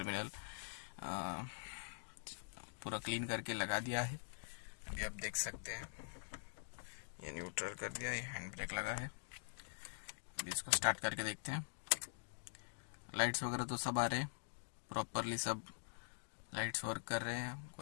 पूरा क्लीन करके लगा दिया है। अभी आप देख सकते हैं ये न्यूट्रल कर दिया, ये हैंड ब्रेक लगा है। अभी इसको स्टार्ट करके देखते हैं। लाइट्स वगैरह तो सब आ रहे हैं प्रॉपरली, सब लाइट्स वर्क कर रहे हैं,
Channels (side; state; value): right; silent; digital silence